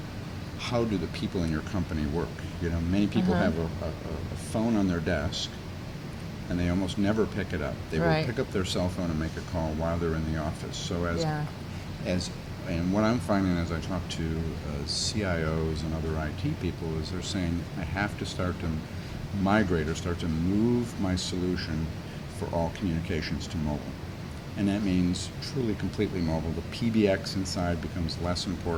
how do the people in your company work? Many people have a phone on their desk, and they almost never pick it up. They Right. will pick up their cell phone and make a call while they're in the office. So and what I'm finding as I talk to CIOs and other IT people is they're saying, I have to start to migrate or start to move my solution for all communications to mobile. and that means truly completely mobile. The PBX inside becomes less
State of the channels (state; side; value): identical; both; correlation 1.00